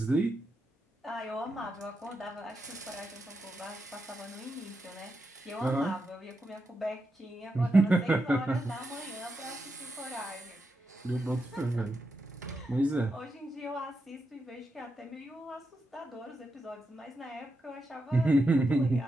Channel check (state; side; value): normal; both; correlation 0.86